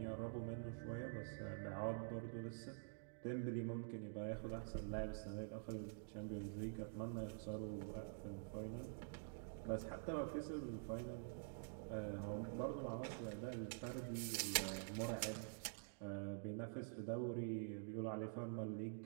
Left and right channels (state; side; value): silent; left; digital silence